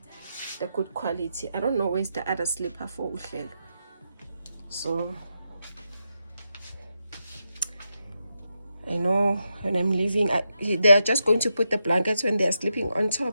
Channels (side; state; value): both; inverted; correlation -0.85